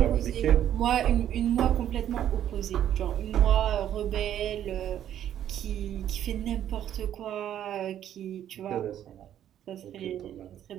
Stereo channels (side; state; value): left; quieter; 10.8 dB